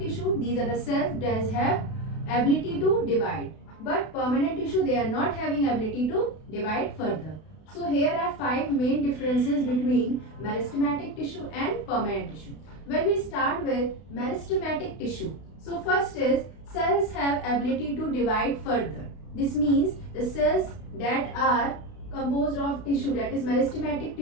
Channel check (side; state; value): right; late; 32 ms